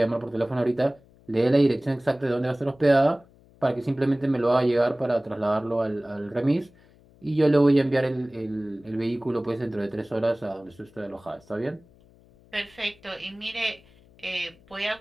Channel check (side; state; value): left; noise; hum, 28 dB below the sound